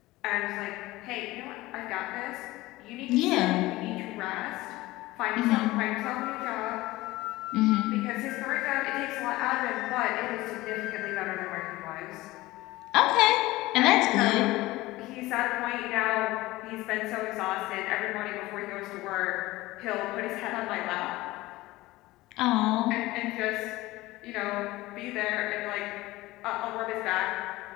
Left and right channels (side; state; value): right; quieter; 18.8 dB